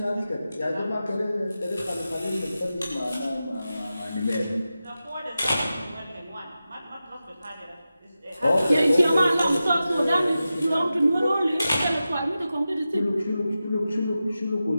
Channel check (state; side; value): inverted; both; correlation -0.93